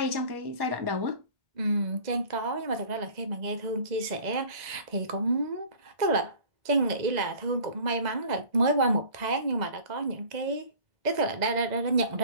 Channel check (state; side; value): late; left; 2.0 ms